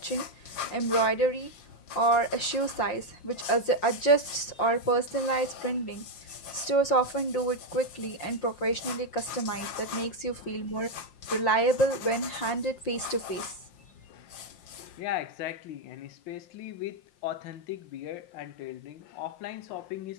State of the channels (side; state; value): right; late; 5.7 ms